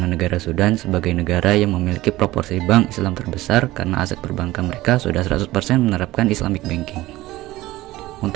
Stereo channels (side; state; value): left; quieter; 17.4 dB